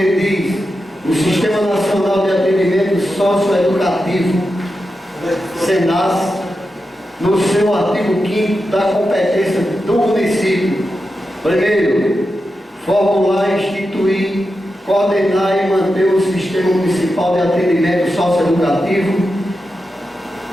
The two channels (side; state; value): both; normal; correlation 0.89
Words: diz o Sistema Nacional de Atendimento Socioeducativo, SENAS, no seu artigo 5º da competência do município. Primeiro, formular, instituir, coordenar e manter o Sistema Municipal de Atendimento Socioeducativo,